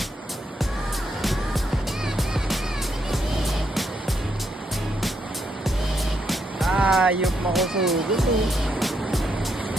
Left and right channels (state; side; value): normal; both; correlation 0.78